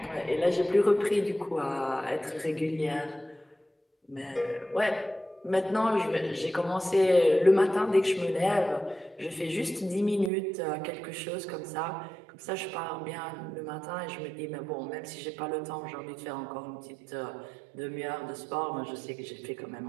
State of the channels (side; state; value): left; drops out; at 10.3 s